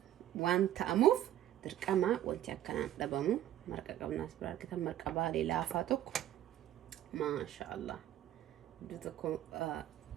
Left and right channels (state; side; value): quieter; left; 12.4 dB